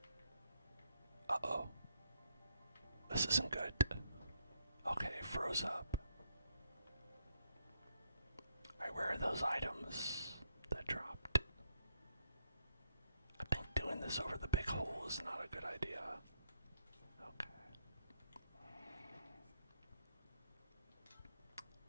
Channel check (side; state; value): both; inverted; correlation -0.74